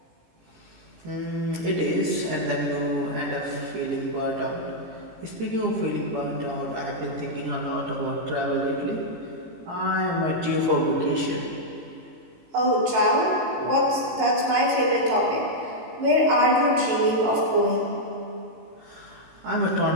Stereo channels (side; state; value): left; late; 18 ms